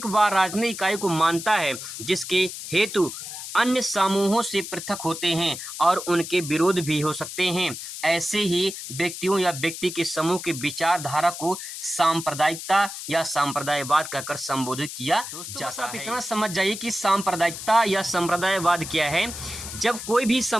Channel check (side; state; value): left; noise; hiss, 9 dB below the sound